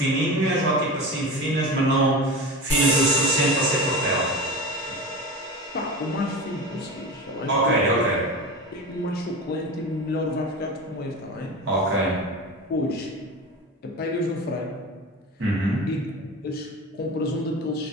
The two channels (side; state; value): both; normal; correlation 0.28